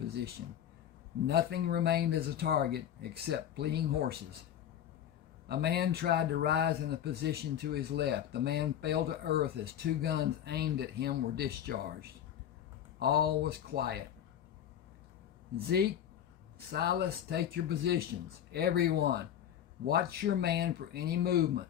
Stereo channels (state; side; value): quieter; right; 10.2 dB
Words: Nothing remained as a target except fleeing horses. A man tried to rise in a position to his left. The man fell to earth as two guns aimed at him were discharged. All was quiet. Zeke, Silas, take your positions. Everyone, watch your man for any movement.